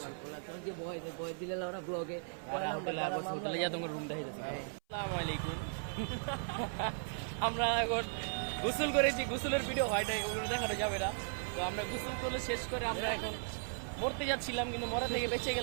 যে বয় দিলে ওরা ব্লগে হোটেলে আবুরছি হোটেলে যা তোমার রুম দেখাইতেছি আসসালামু আলাইকুম আমরা এখন গোসল করেছি গোসলের ভিডিও হয় নাই ওগুলো দেখানো যাবে না তো আমরা গোসল করে শেষ করে আমরা এখন মরতে যাচ্ছিলাম কিন্তু মরা থেকে বেঁচে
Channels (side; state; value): left; silent; 53 dB below the other